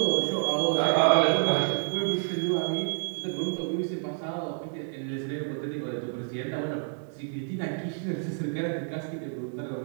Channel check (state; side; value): silent; left; 59 dB below the other